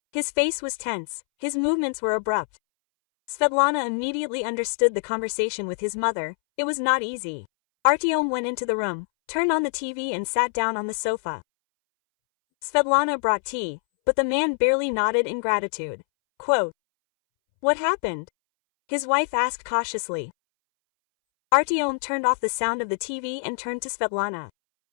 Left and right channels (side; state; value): right; silent; 62 dB below the other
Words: His face was tense, his movements were abrupt. Svetlana immediately understood the conversation with his mother. It was not easy. Artyom went into the room, turned on the TV and sat down on the sofa. Svetlana brought tea, but the man barely nodded in gratitude. Quote, "What happened?" his wife asked cautiously. Artyom turned off the sound of the TV and turned to Svetlana.